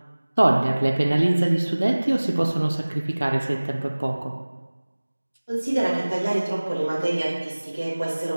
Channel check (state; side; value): inverted; both; correlation -1.00